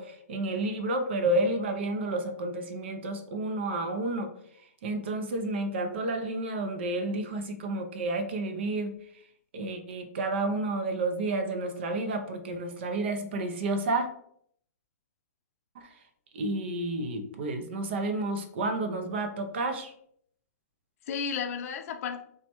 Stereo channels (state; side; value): normal; both; correlation -0.03